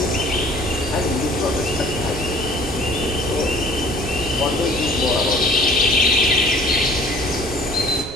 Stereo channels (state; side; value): normal; both; correlation 0.52